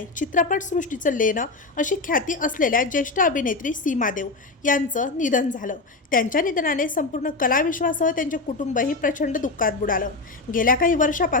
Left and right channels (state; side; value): quieter; right; 3.5 dB